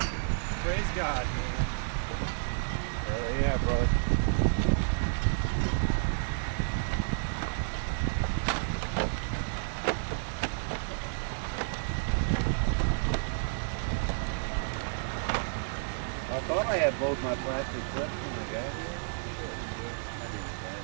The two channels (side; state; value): left; silent; digital silence